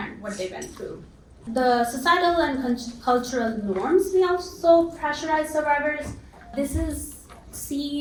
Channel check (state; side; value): identical; both; correlation 1.00